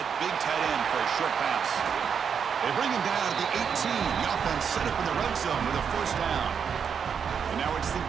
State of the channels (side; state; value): left; quieter; 7.0 dB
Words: big tight end for a short pass. They bring him down at the 18. The offense set up in the red zone with a first down. And now it's the